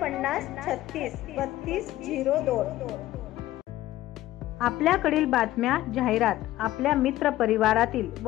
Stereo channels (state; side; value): quieter; right; 15.3 dB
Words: आपल्याकडील बातम्या, जाहिरात, आपल्या मित्र परिवारातील